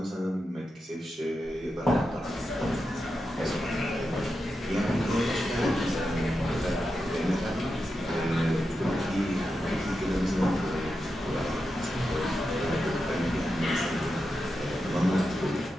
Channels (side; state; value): both; normal; correlation 0.88